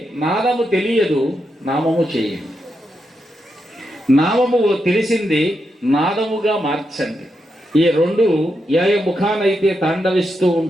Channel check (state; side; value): normal; both; correlation 0.84